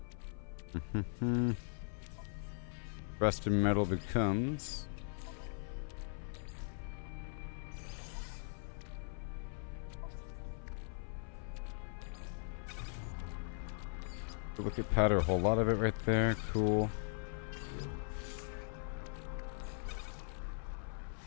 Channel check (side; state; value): right; silent; 51 dB below the other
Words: Rusted metal becomes. Look at powder, a whole lot of it right there. Cool.